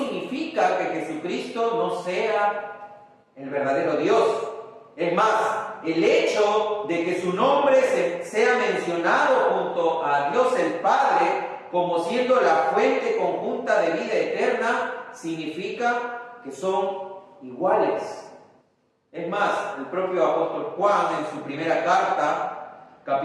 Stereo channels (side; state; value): both; identical; correlation 1.00